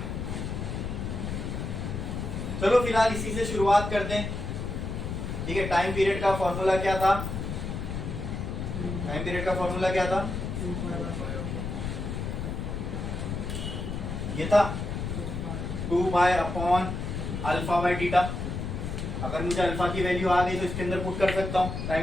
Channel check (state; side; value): noise; left; rumble, 4 dB below the sound